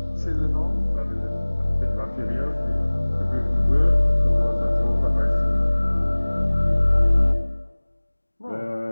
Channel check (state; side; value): inverted; both; correlation -1.00